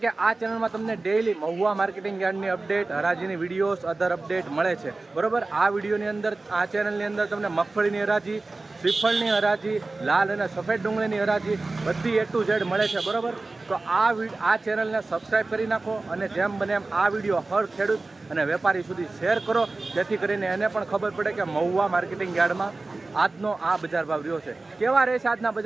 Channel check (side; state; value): left; quieter; 3.4 dB